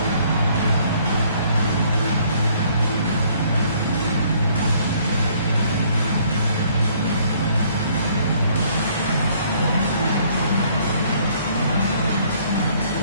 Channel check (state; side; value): inverted; both; correlation -0.62